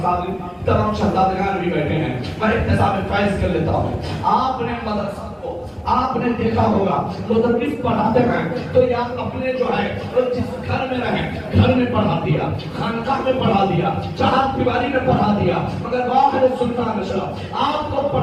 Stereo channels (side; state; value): both; identical; correlation 1.00